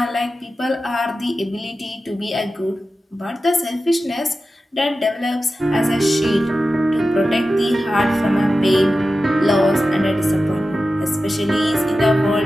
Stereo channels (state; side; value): normal; both; correlation 0.93